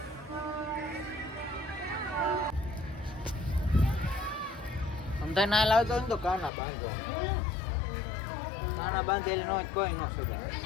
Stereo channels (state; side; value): drops out; right; at 6.5 s